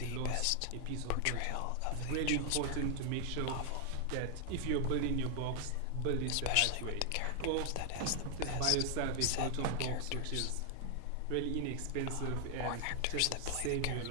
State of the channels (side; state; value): both; different; correlation 0.00